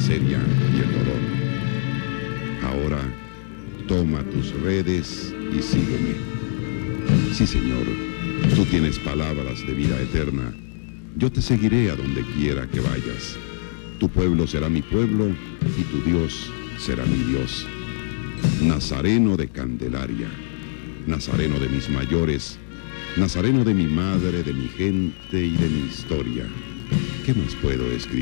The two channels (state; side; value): silent; right; digital silence